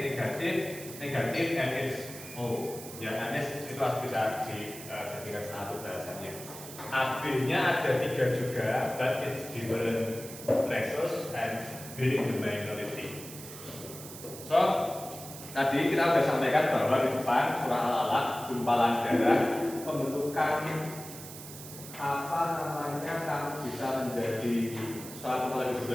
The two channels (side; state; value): right; noise; hiss, 13 dB below the sound